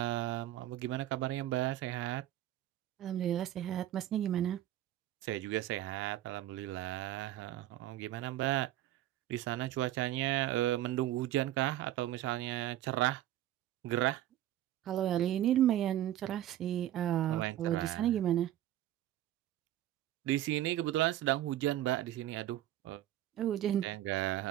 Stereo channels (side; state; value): left; quieter; 13.2 dB